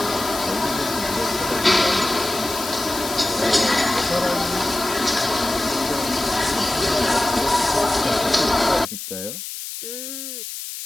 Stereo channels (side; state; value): left; noise; hiss, 8 dB below the sound